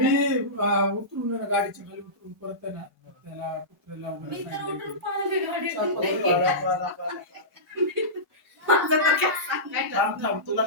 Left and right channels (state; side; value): normal; both; correlation -0.18